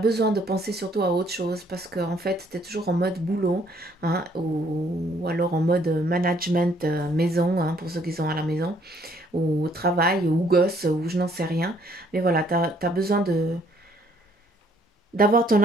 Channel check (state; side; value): normal; both; correlation 0.64